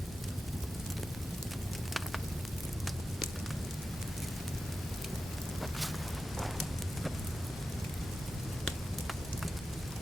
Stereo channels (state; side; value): normal; both; correlation 0.92